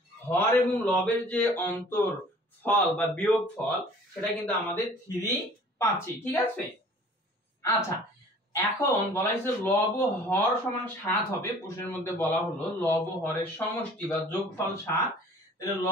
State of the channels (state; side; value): normal; both; correlation 0.49